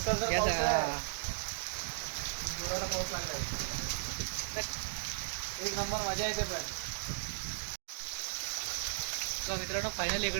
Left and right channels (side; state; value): left; silent; digital silence